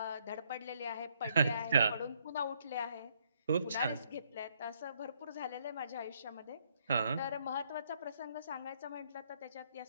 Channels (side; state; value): both; inverted; correlation -0.71